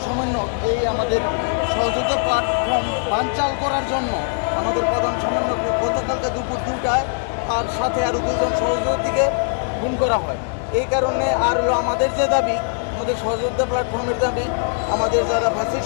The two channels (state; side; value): silent; right; 65 dB below the other